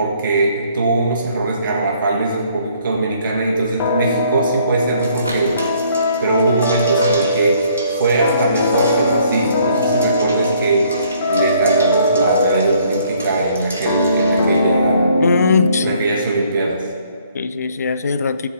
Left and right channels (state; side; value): inverted; both; correlation -0.64